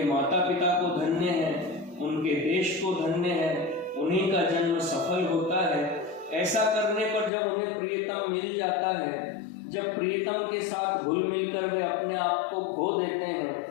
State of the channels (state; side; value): drops out; right; at 7.3 s